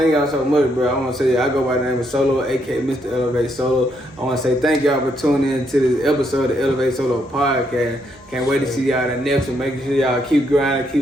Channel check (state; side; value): noise; right; hum, 30 dB below the sound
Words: y'all so much, bro. I want to say, I go by the name of Solo, a.k.a. Mr. Elevate Solo. I want to say thank y'all for tuning in to this episode of the Elevate Solo podcast. Can't wait to see y'all in the next one. Make sure y'all keep grinding,